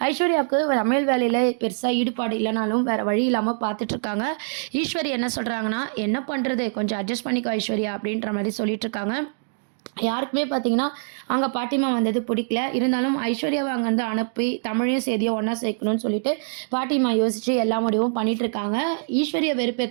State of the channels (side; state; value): left; silent; digital silence